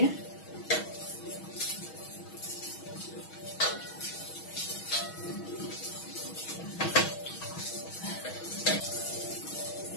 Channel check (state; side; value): late; right; 6.2 ms